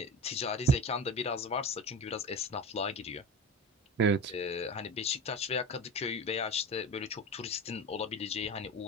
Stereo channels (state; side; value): normal; both; correlation 0.29